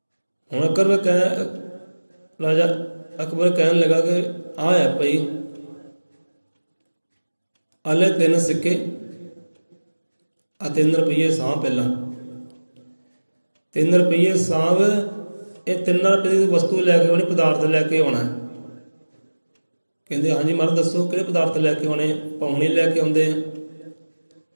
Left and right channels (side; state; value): both; inverted; correlation -1.00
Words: ਹੁਣ ਰਾਜਾ ਅਕਬਰ ਕਹਿਣ ਲੱਗਾ ਕਿ ਆ ਹੈ ਭਾਈ, ਆਲੇ 3 ਸਿੱਕੇ ਆ 3 ਰੁਪਈਏ ਸਾਂਭ ਪਹਿਲਾਂ। 3 ਰੁਪਈਏ ਸਾਂਭ। ਇਹ 3 ਰੁਪਏ ਦੀ ਵਸਤੂ ਲੈ ਕੇ ਆਉਣੀ, ਪਦਾਰਥ ਲੈ ਕੇ ਆਉਣਾ। ਕਹਿੰਦੇ ਹਾਂਜੀ ਮਹਾਰਾਜ ਦੱਸੋ ਕਿਹੜੇ ਪਦਾਰਥ ਲੈ ਕੇ ਆਉਣੇ? ਪਾਉਣੀ ਲੈ ਕੇ ਆਉਂਦੇ ਆ।